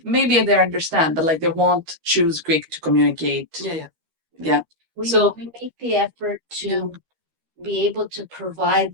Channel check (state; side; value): late; left; 13 ms